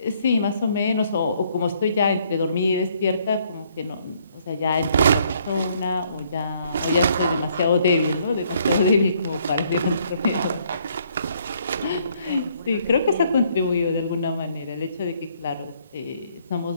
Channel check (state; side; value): inverted; both; correlation -0.67